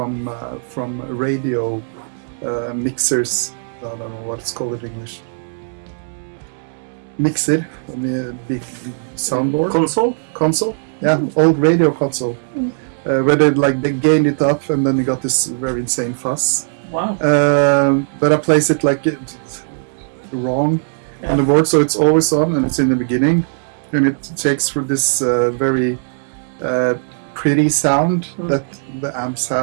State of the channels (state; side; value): silent; left; digital silence